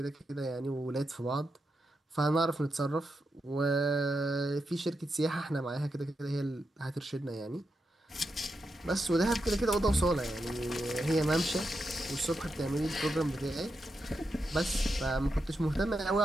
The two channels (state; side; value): normal; both; correlation 0.86